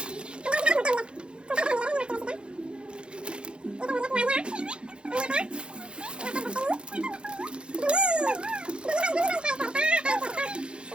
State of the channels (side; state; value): left; late; 0.054 ms